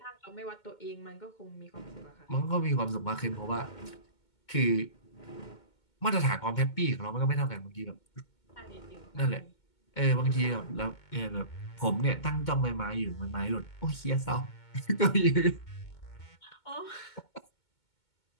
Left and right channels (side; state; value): right; late; 2.2 ms